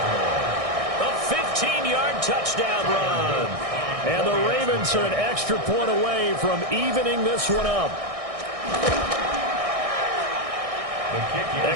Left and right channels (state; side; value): late; left; 1.6 ms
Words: A 15-yard touchdown run. And the Ravens are an extra point away from evening this one up.